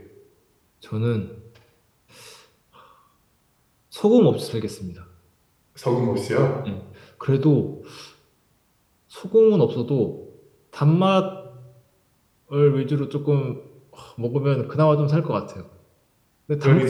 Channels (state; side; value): identical; both; correlation 1.00